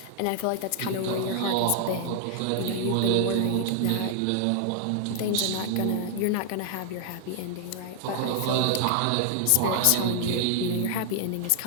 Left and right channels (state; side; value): different; both; correlation 0.00